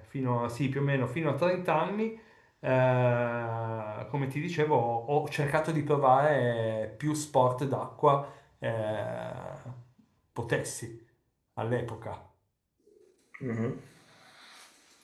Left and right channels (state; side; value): identical; both; correlation 1.00